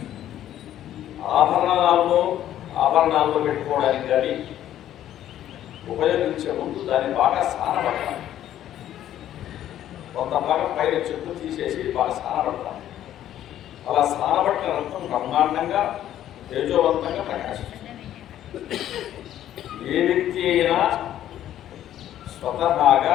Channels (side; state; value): right; quieter; 11.9 dB